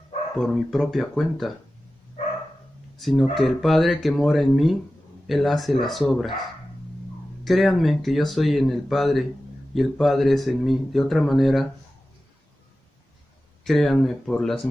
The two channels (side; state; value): both; normal; correlation 0.94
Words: por mi propia cuenta, sino que el Padre que mora en mí, Él hace las obras. Créanme que yo soy en el Padre y el Padre es en mí. De otra manera, créanme por las